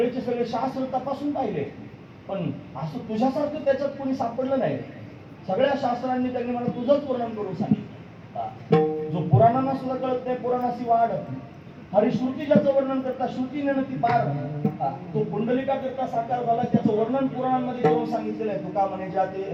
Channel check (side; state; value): both; identical; correlation 1.00